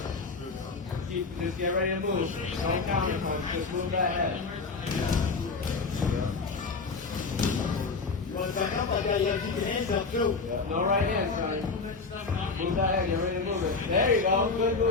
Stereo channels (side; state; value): right; quieter; 4.3 dB